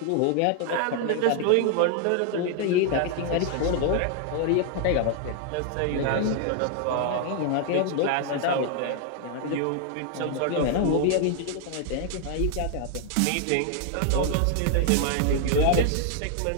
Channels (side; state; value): both; different; correlation 0.00